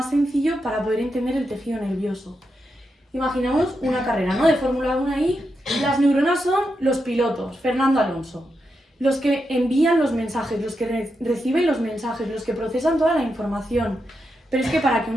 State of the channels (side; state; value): both; normal; correlation 0.85